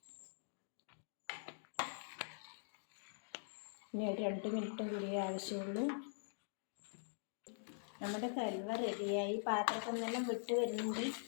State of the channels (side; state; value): right; silent; digital silence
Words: ഇനി ഒരു 2 മിനിറ്റും കൂടിയേ ആവശ്യമുള്ളൂ. നമ്മുടെ ഹൽവ റെഡിയായി. പാത്രത്തിൽ നിന്നെല്ലാം വിട്ട് വരുന്നുണ്ട്.